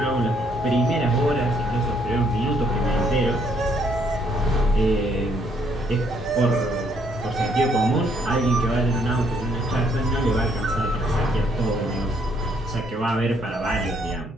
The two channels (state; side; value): normal; both; correlation 0.68